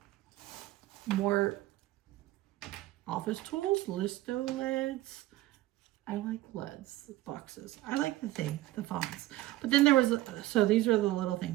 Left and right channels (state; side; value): quieter; left; 16.6 dB